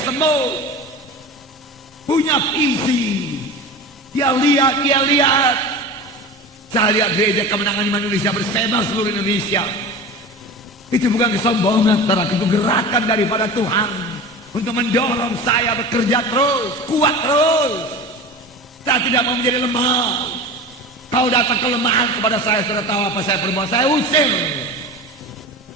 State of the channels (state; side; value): normal; both; correlation 0.32